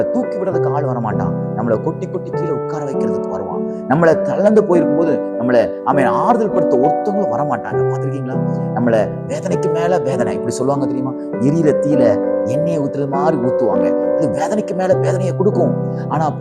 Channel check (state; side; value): identical; both; correlation 1.00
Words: தூக்கி விடுறதுக்கு ஆள் வரமாட்டான். நம்மளை கொட்டி கொட்டி கீழே உட்கார வைக்கிறதுக்கு வருவான். நம்மளை தளர்ந்து போயிருக்கும் போது நம்மளை ஆறுதல் படுத்த ஒருத்தவங்களும் வரமாட்டாங்க. பார்த்துருக்கீங்களா? நம்மளை வேதனைக்கு மேல வேதனை, இப்படி சொல்லுவாங்க தெரியுமா? எரியிற தீல எண்ணெயை ஊத்துறது மாதிரி ஊத்துவாங்க. அது வேதனைக்கு மேல வேதனையை கொடுக்கும். ஆனா